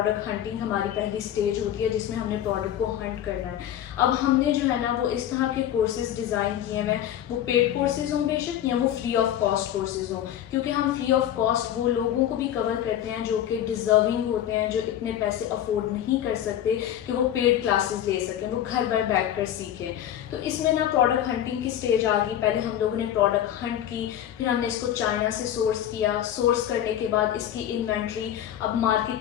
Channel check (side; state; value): right; quieter; 11.0 dB